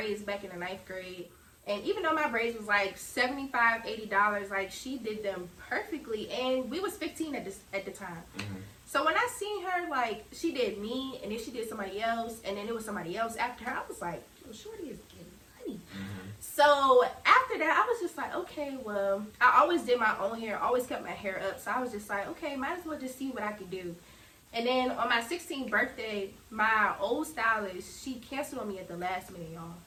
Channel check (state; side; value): identical; both; correlation 1.00